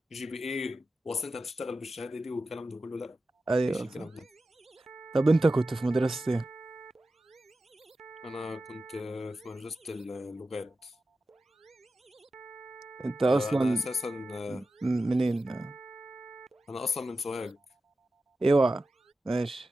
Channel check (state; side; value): normal; both; correlation 0.92